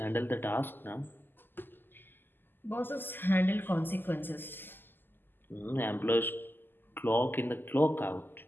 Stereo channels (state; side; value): late; right; 0.094 ms